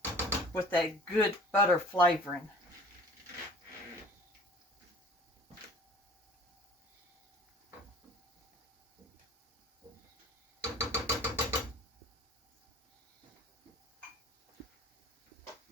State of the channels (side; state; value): both; normal; correlation 0.47